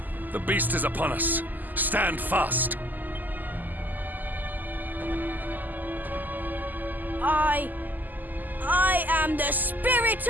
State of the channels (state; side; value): late; left; 0.085 ms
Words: The beast is upon us. Stand fast. I am the spirit